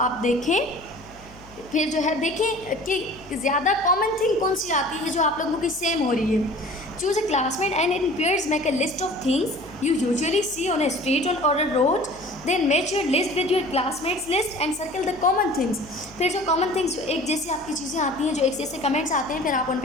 देखें। फिर जो है देखें कि ज़्यादा कॉमन थिंग कौन सी आती है जो आप लोगों की सेम हो रही है। Choose a classmate and in pairs make a list of things you usually see on a street or a road. Then match your list with your classmates list and circle the common things. फिर जो common things, जो एक जैसी आपकी चीज़ें आती हैं, जो एक जैसे कमेंट्स आते हैं, फिर आप उन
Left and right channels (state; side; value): noise; left; hum, 22 dB below the sound